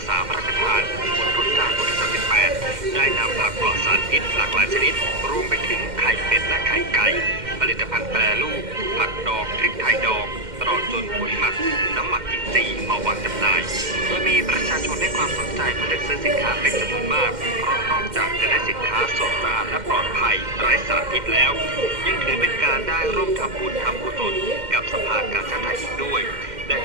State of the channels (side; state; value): left; late; 2.1 ms